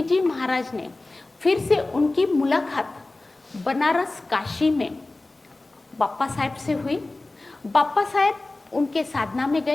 जी महाराज ने फिर से उनकी मुलाकात बनारस काशी में बाप्पा साहेब से हुई बाप्पा साहेब उनके साधना में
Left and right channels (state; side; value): quieter; right; 3.0 dB